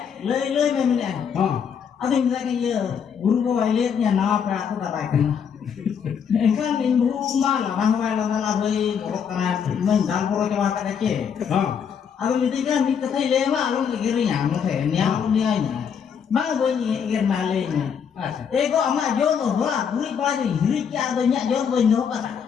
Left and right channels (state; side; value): quieter; right; 7.3 dB